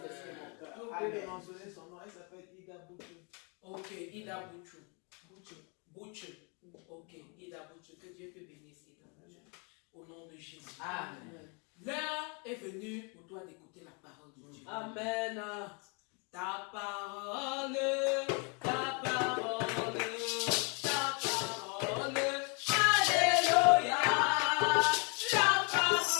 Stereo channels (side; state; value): right; quieter; 34.7 dB